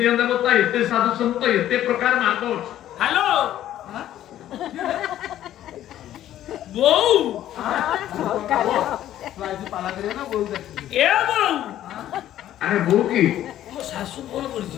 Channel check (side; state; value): right; quieter; 12.4 dB